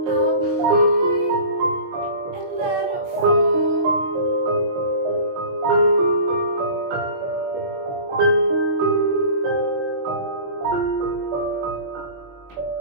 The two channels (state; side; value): late; left; 22 ms